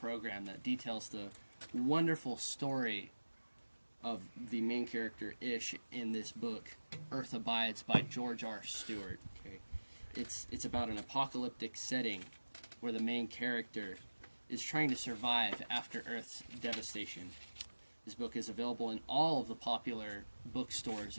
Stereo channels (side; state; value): both; inverted; correlation -1.00